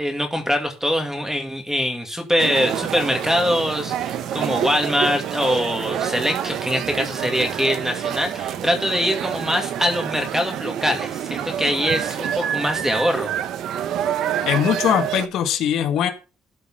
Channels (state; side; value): normal; both; correlation 0.75